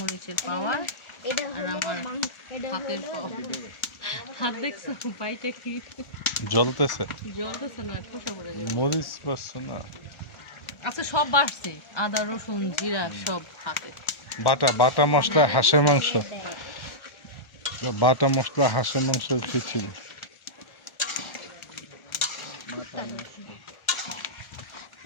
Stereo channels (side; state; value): right; late; 1.4 ms